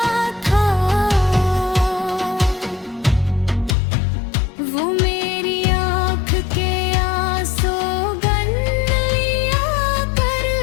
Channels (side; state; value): right; drops out; at 3.8 s